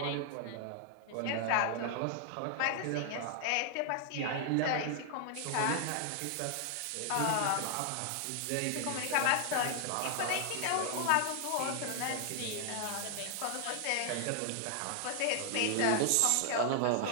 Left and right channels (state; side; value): different; both; correlation 0.00